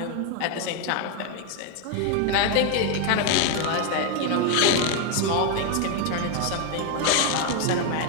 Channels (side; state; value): both; different; correlation 0.01